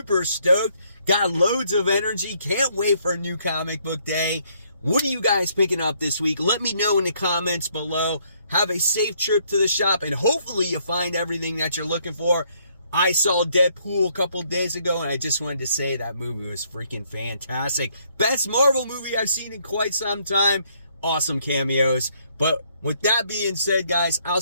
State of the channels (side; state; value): both; inverted; correlation -0.69